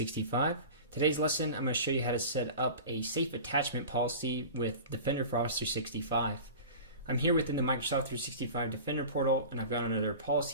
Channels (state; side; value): inverted; both; correlation -0.36